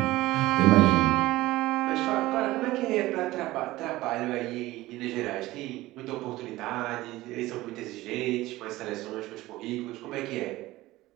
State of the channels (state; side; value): quieter; left; 17.8 dB